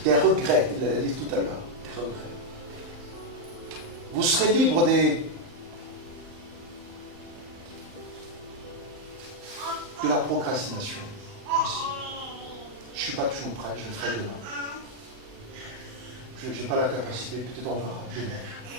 des regrets, il l'a dit tout à l'heure, des regrets. Vous serez libre de la procrastination aussi. Je ne suis pas toujours prêt, je le ferai demain. Je n'ai pas la capacité, peut-être on verra demain.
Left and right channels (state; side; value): late; left; 39 ms